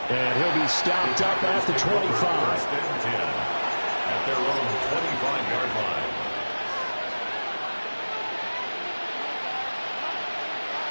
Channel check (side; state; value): both; inverted; correlation -1.00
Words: And he'll be stopped up at the 25. At their own 25-yard line.